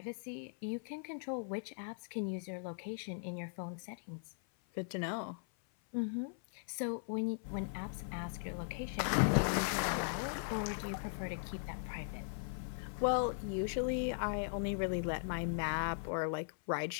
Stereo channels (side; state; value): right; silent; 52 dB below the other